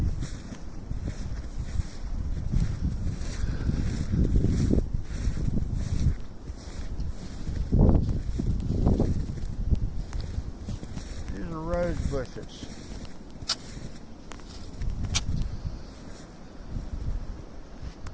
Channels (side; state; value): both; identical; correlation 1.00